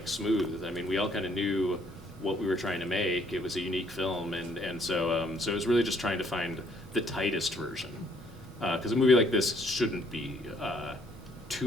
smooth. I mean, we all kind of knew what we were trying to make. It was a unique film, and so it was really just trying to find the tightest version, because a movie like this shouldn't be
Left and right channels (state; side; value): normal; both; correlation 0.65